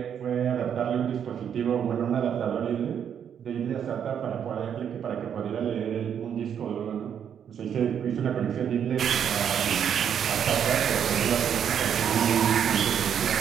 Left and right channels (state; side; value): quieter; left; 8.5 dB